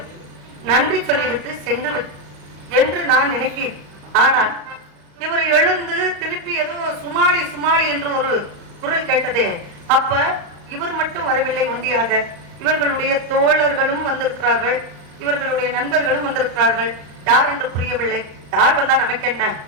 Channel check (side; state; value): left; late; 35 ms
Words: நன்றி சொல்லிவிட்டு சென்று என்று நான் நினைக்கிறேன். ஆனால் இவர் எழுந்து திருப்பி ஏதோ சுமாளி சுமாளி என்று ஒரு குரல் கேட்டதே. அப்ப இவர் மட்டும் வரவில்லை ஒன்றியாக, இவர்களுடைய தோழர்களும் வந்திருக்கிறார்கள், இவர்களுடைய நண்பர்களும் வந்திருக்கிறார்கள். யார் என்று புரியவில்லை. யார் வந்தா நமக்கு என்ன?